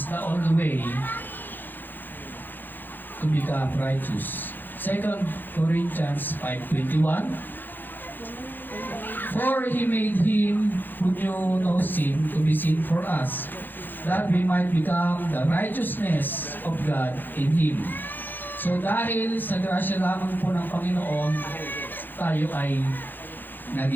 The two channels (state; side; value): late; right; 0.090 ms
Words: the only way to become righteous. 2 Corinthians 5:21. For He made Him who knew no sin to be sin for us, that we might become the righteousness of God in Him. So dahil sa grasya lamang po ng Panginoon, tayo ay